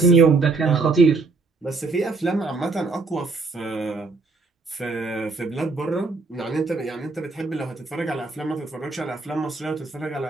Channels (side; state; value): left; quieter; 3.8 dB